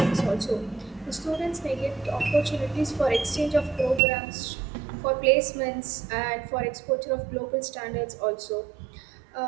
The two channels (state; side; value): drops out; left; at 4.0 s